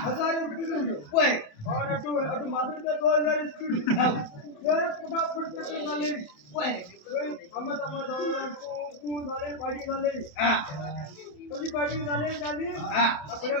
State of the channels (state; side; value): late; right; 27 ms